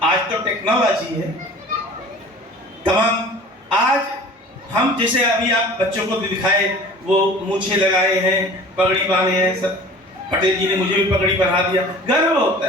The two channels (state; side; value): normal; both; correlation 0.44